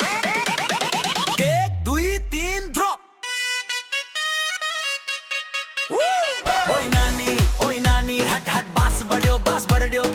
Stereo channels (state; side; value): identical; both; correlation 1.00